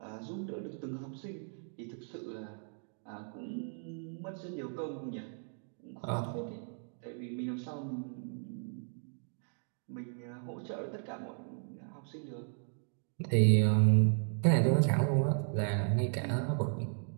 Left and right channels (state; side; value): silent; left; 54 dB below the other